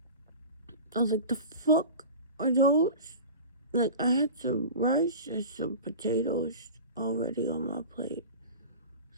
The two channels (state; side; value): inverted; both; correlation -0.34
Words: I was like, the fuck are those? Like, I had some rice and some potatoes already on my plate,